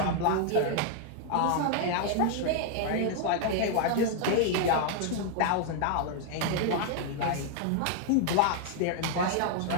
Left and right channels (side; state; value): both; different; correlation 0.00